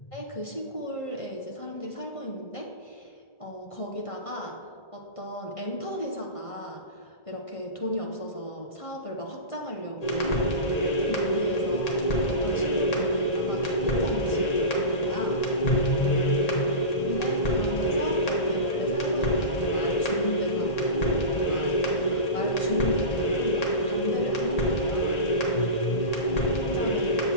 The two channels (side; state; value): right; late; 1.8 ms